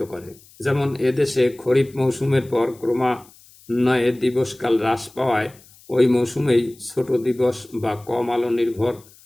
করে। যেমন এদেশে খরিফ মৌসুমের পর ক্রমান্বয়ে দিবসকাল হ্রাস পাওয়ায় ওই মৌসুমেই ছোট দিবস বা কম আলো নির্ভর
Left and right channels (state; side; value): noise; left; hiss, 26 dB below the sound